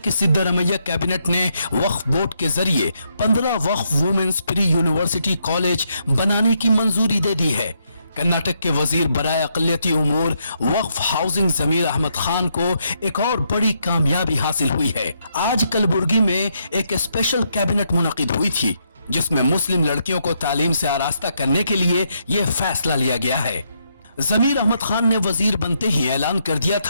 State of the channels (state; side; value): inverted; both; correlation -0.77